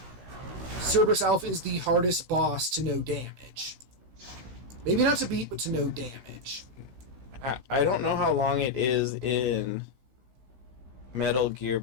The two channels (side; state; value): left; late; 16 ms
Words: Cerberus Alpha is the hardest boss to no damage. Maybe not to beat, but to no damage. I don't know how long it is in Metal Gear,